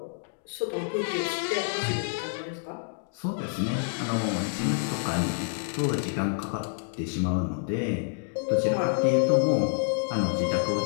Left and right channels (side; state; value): right; silent; digital silence